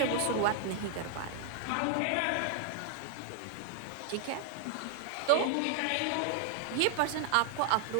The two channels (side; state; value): both; different; correlation 0.00